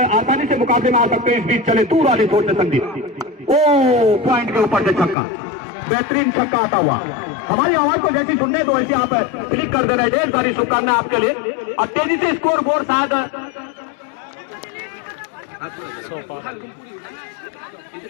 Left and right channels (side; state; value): right; drops out; at 5.2 s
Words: से मुकाबले में आ सकते हैं। इस बीच चले दूर वाली छोड़ से संदीप, ओ पॉइंट के ऊपर से छक्का, बेहतरीन छक्का आता हुआ। हमारी आवाज को जैसी सुनने तो वैसे आप क्लिक कर देना। ढेर सारी शुभकामनाएं आपके लिए। अब तेजी से स्कोर बोर्ड शायद